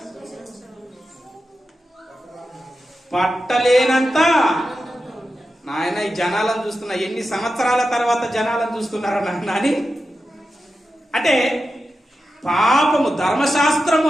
పట్టలేనంత. నాయన ఈ జనాలను చూస్తున్నా, ఎన్ని సంవత్సరాల తర్వాత జనాలను చూస్తున్నారా నాన్న అని. అంటే పాపము, ధర్మశాస్త్రము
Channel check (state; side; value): normal; both; correlation 0.91